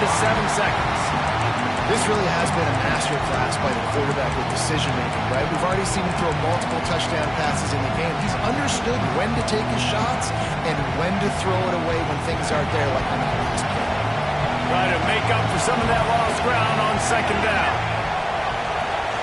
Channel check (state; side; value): identical; both; correlation 1.00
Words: 7 seconds. This really has been a master class by the quarterback with decision-making, right? We've already seen him throw multiple touchdown passes in the game. He's understood when to take his shots and when to throw it away when things aren't there, like on that last play. Try to make up for some of that lost ground on second down.